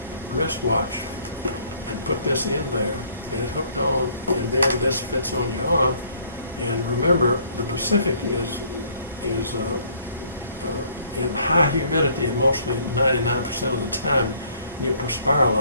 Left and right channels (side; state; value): both; inverted; correlation -0.61